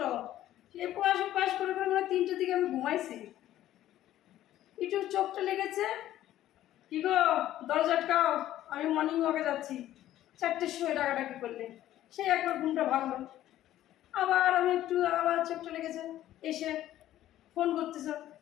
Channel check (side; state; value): right; quieter; 13.3 dB